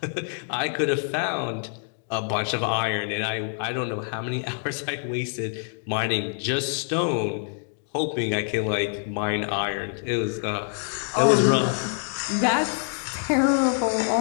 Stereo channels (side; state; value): right; silent; 58 dB below the other